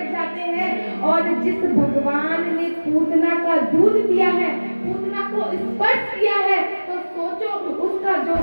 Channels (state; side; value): inverted; both; correlation -1.00